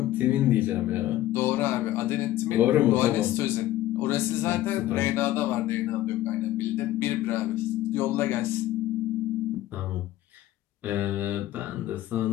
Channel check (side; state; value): right; quieter; 14.5 dB